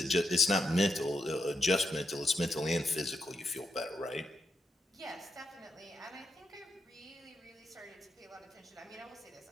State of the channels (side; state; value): both; normal; correlation 0.82